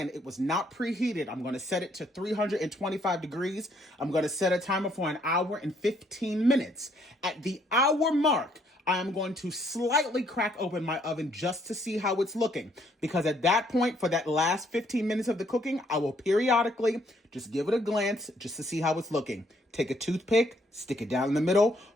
it was not preheated. I'm going to set it to 325 degrees. I'm going to set a timer for an hour and 15 minutes. At the hour mark, I am going to slightly crack open my oven just to see how it's looking. Because at that point, for that last 15 minutes of the cooking, I will periodically just give it a glance just to see how it's looking. Take a toothpick, stick it down in the middle.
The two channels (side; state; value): both; normal; correlation 0.68